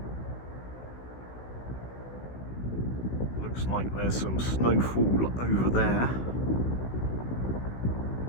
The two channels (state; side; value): late; right; 16 ms